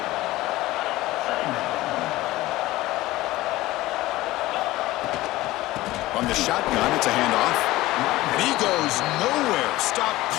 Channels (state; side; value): quieter; right; 17.7 dB